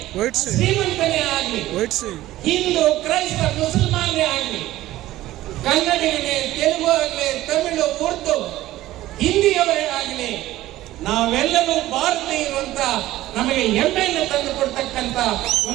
ಶ್ರೀಮಂತನೇ ಆಗಲಿ, ಹಿಂದೂ, ಕ್ರೈಸ್ತ, ಮುಸಲ್ಮಾನೇ ಆಗಲಿ, ಕನ್ನಡಿಗನೇ, ತೆಲುಗು ಆಗಲಿ, ತಮಿಳು, ಉರ್ದು, ಹಿಂದಿಯವರೇ ಆಗಲಿ, ನಾವೆಲ್ಲರೂ ಭಾರತೀಯರು ಅಂತ ನಮಗೆ ಹೆಮ್ಮೆಯನ್ನು ತಂದು ಕೊಡ್ತಕ್ಕಂಥ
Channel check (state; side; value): quieter; left; 15.6 dB